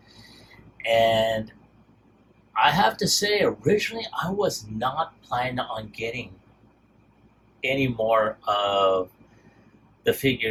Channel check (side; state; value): both; identical; correlation 1.00